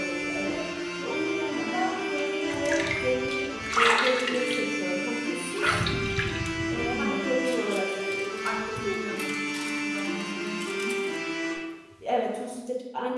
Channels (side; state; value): both; identical; correlation 1.00